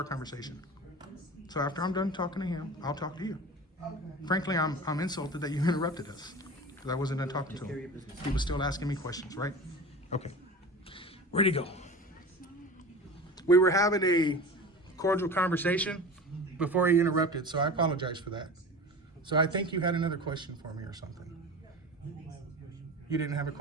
conversation. So after I'm done talking to him, I'll talk to you. Frankly, I'm insulted that you interrupted us. Because I wasn't done talking to Take care of your him. business. He was still asking me questions, right? Okay. Where'd he go? We were having a cordial conversation before he interrupted, so I apologize for that. So I think you had another question for me or something. You didn't have a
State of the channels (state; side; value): normal; both; correlation 0.34